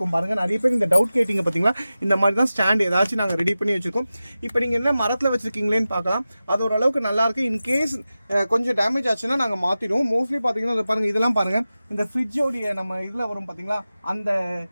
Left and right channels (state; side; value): inverted; both; correlation -0.95